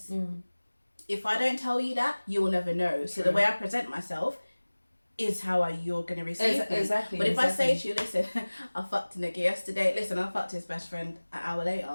If I don't tell you that, you will never know. So the way I present myself is how you're going to receive me. Exactly. But if I say to you, listen, I fucked a nigga yesterday, listen, I fucked his best friend an hour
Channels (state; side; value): inverted; both; correlation -1.00